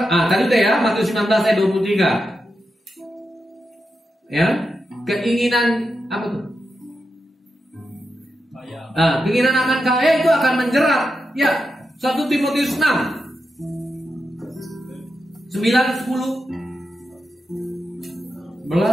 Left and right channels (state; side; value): normal; both; correlation 0.87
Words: tadi udah ya, Matius 19 ayat 23. Ya, keinginan apa tuh? Keinginan akan kaya itu akan menjerat. Ya, 1 Timotius 6 9, 10